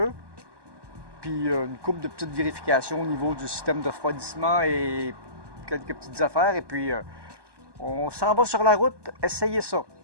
puis une couple de petites vérifications au niveau du système de refroidissement et quelques petites affaires. Et puis, on s'en va sur la route. Essayez ça.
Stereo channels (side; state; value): left; late; 1.2 ms